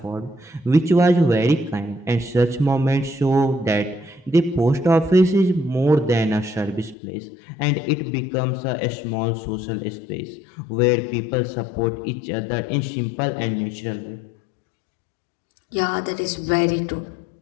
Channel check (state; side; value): drops out; right; at 7.0 s